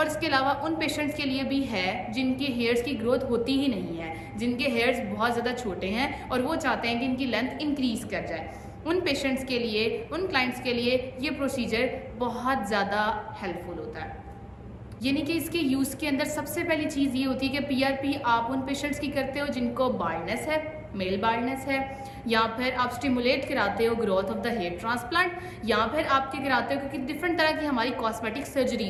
इसके अलावा उन पेशेंट्स के लिए भी है जिनके हेयर्स की ग्रोथ होती ही नहीं है, जिनके हेयर्स बहुत ज़्यादा छोटे हैं और वो चाहते हैं कि इनकी लेंथ इंक्रीज़ कर जाए। उन पेशेंट्स के लिए, उन क्लाइंट्स के लिए ये प्रोसीजर बहुत ज़्यादा हेल्पफुल होता है। यानी कि इसके यूज़ के अंदर सबसे पहली चीज़ ये होती है कि पीआरपी आप उन पेशेंट्स की करते हो जिनको बाल्डनेस है, मेल बाल्डनेस है, या फिर आप स्टिमुलेट कराते हो growth of the hair transplant, या फिर आपके कराते हो क्योंकि डिफरेंट तरह की हमारी कॉस्मेटिक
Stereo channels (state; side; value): identical; both; correlation 1.00